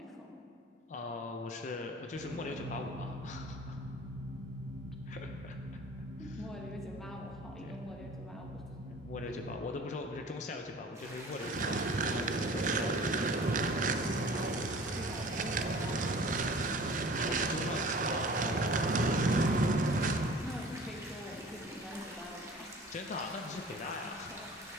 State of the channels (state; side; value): normal; both; correlation 0.45